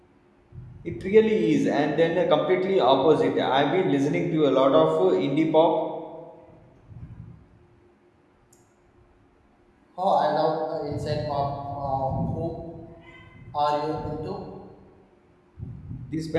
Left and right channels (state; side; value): identical; both; correlation 1.00